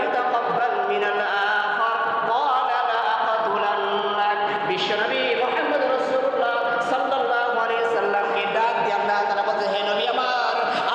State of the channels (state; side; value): identical; both; correlation 1.00